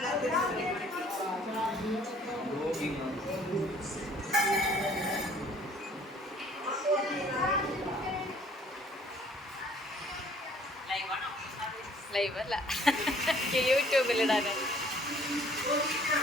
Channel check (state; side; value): normal; both; correlation 0.57